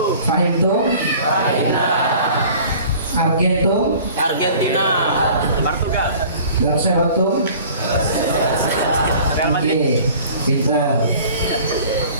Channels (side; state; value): both; inverted; correlation -0.47